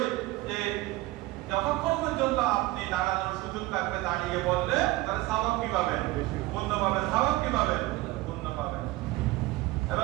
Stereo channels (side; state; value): left; quieter; 18.7 dB